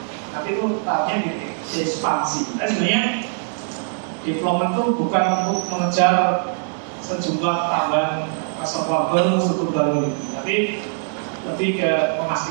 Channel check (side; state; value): left; silent; 61 dB below the other